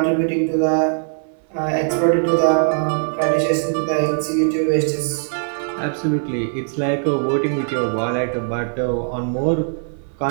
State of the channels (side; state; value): left; silent; 65 dB below the other